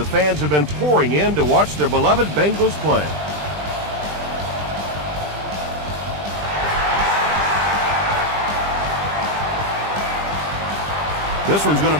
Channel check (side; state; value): left; late; 20 ms